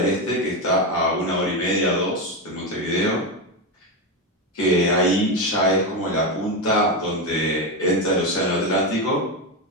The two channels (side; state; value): both; normal; correlation 0.12